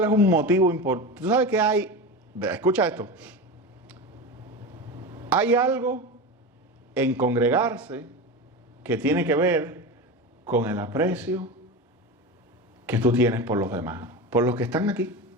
es un motivo importante? ¿Tú sabes que hay? Escucha esto. Hay algo en congregarse que tiene que ver con el aprecio que tú tienes por los demás, por los que están aquí.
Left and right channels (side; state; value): both; normal; correlation 0.24